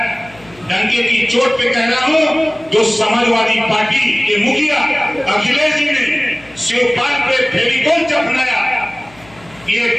डंके की चोट पे कह रहा हूं, जो समाजवादी पार्टी के मुखिया अखिलेश जी ने शिवपाल पे फेविकोल चपनाया, ये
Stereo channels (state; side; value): noise; left; hum, 25 dB below the sound